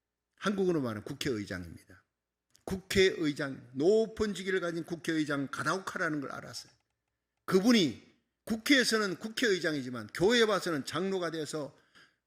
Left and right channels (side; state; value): both; identical; correlation 1.00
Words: 한국어로 말하면 국회의장입니다. 국회의장, 높은 직위를 가진 국회의장 가다오카라는 걸 알았어요. 그분이 국회에서는 국회의장이지만 교회에 와서는 장로가 돼서